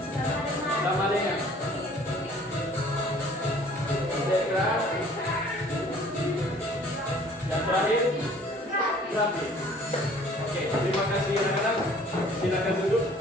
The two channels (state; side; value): normal; both; correlation 0.53